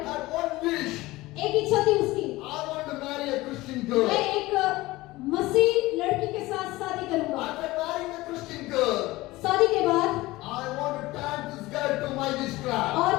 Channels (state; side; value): quieter; right; 19.3 dB